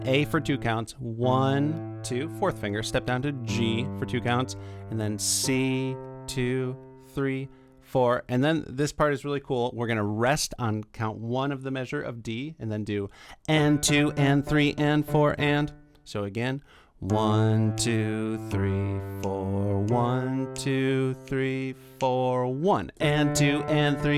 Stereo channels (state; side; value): identical; both; correlation 1.00